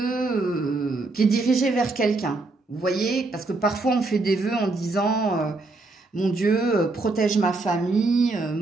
qui est dirigé vers quelqu'un. Vous voyez, parce que parfois on fait des vœux en disant mon Dieu, protège ma famille,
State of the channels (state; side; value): quieter; left; 3.3 dB